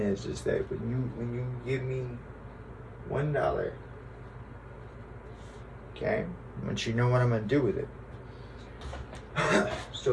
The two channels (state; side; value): identical; both; correlation 1.00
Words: is that when you give me $1, okay, I want you to know what I'm going to do with it.